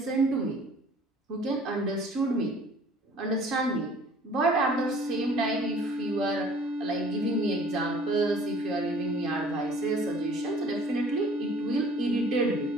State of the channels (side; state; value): both; normal; correlation 0.52